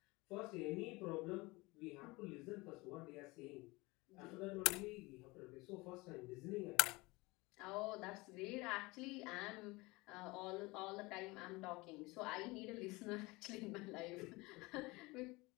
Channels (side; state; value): right; quieter; 23.3 dB